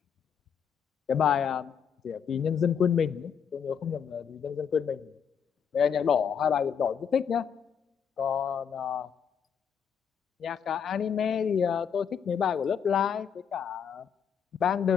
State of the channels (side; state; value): right; quieter; 7.4 dB